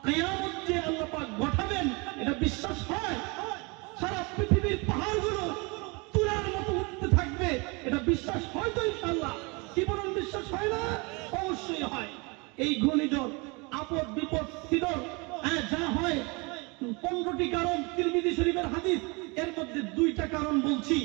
কিয়ামত যে আল্লাহ পাক ঘটাবেন, এটা বিশ্বাস হয়? সারা পৃথিবীর পাহাড়গুলো তুলার মতো উঠতে থাকবে, এটা বিশ্বাস হয় তো ইনশাআল্লাহ? কি বলেন, বিশ্বাস হয় না? অবশ্যই হয়। এই ঘূর্ণিঝড়, আপদ বিপদ সিডর, যা হয় 15টি কারণ, তিরমিজি শরীফের হাদিস। এর মধ্যে 2টা কারণ বলছি,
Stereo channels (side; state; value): left; quieter; 28.7 dB